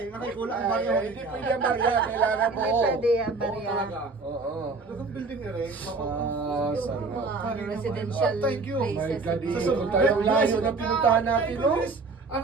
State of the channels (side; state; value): left; quieter; 3.9 dB